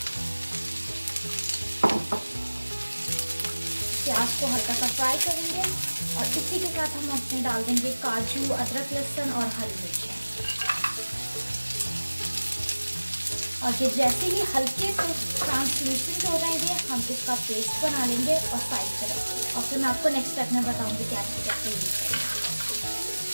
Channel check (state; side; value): inverted; both; correlation -1.00